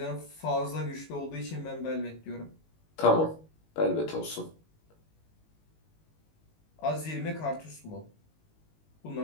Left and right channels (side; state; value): right; late; 19 ms